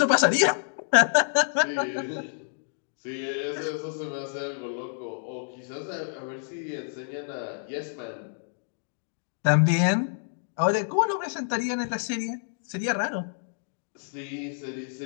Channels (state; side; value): silent; right; digital silence